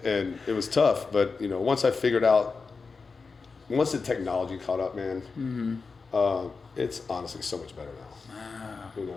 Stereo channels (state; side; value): quieter; right; 4.6 dB